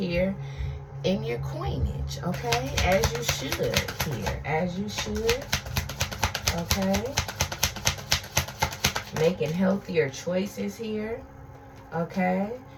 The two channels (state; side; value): identical; both; correlation 1.00